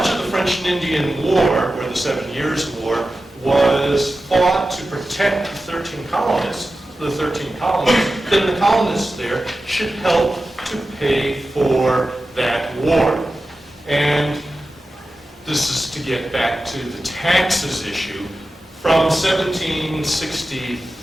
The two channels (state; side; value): normal; both; correlation 0.93